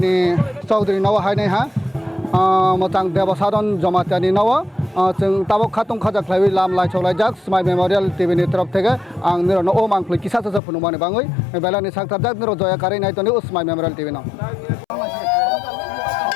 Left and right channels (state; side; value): drops out; right; at 10.6 s